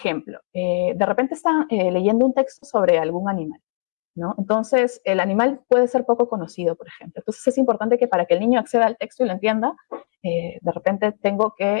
De repente están leyendo un texto sobre algún animal, ¿no? Entonces, el animal puede ser poco conocido, por ejemplo. Entonces, es importante que para que el niño acceda al texto y lo entienda, de repente tengo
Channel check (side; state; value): right; silent; digital silence